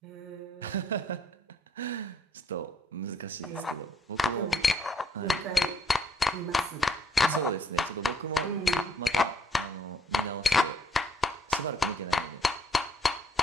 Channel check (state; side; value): normal; both; correlation 0.66